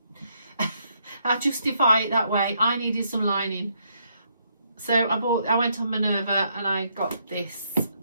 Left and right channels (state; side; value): inverted; both; correlation -0.74